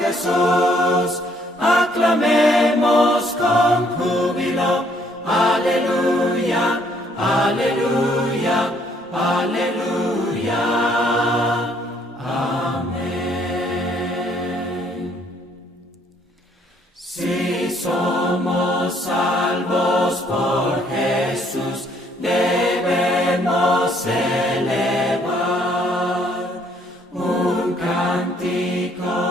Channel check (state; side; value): normal; both; correlation 0.66